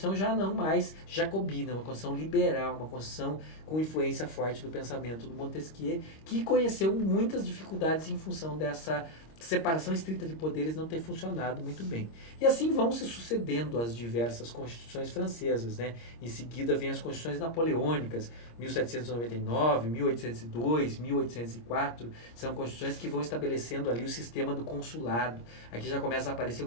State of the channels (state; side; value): late; right; 26 ms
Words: já não mais jacobina, uma Constituição liberal, uma Constituição com influência forte do pensamento do Montesquieu, que conheceu muitas dificuldades em função dessa separação estrita de poderes não ter funcionado muito bem. E assim vão se sucedendo as diversas constituições francesas, né? Em seguida vem as constituições napoleônicas, 1799, 1802, 1804, são constituições que vão estabelecendo ali o sistema do consulado. Aqui já começa a aparecer um